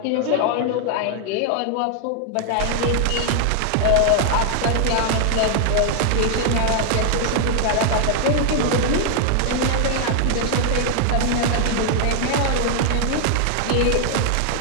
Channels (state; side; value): different; both; correlation 0.00